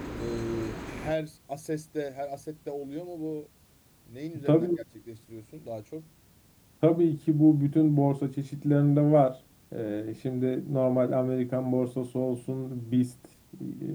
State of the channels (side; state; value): both; identical; correlation 1.00